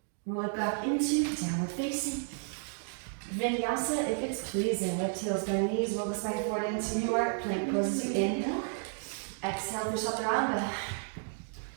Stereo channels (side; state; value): left; silent; digital silence